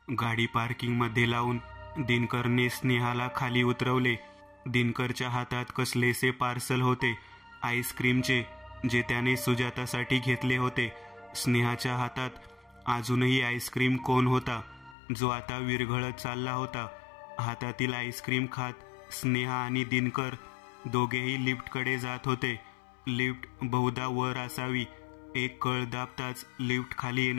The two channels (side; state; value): right; drops out; at 15.0 s